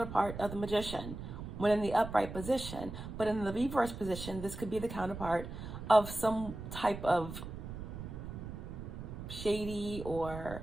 of the Magician when in the upright position. But in the reverse position, this could be the counterpart of some type of shady or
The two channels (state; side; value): noise; right; rumble, 9 dB below the sound